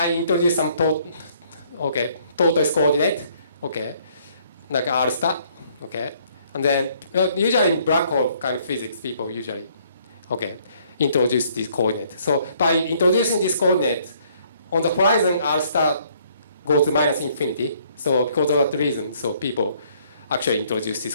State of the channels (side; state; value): both; inverted; correlation -0.64